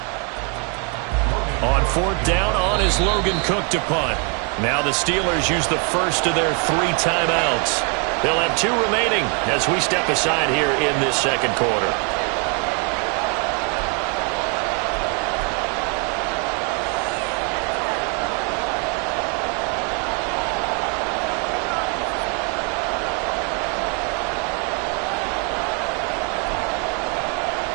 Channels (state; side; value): quieter; left; 37.0 dB